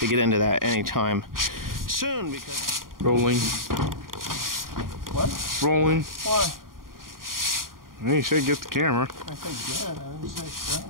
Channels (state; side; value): late; left; 0.91 ms